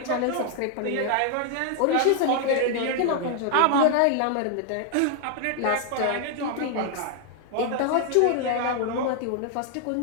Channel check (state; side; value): different; both; correlation 0.00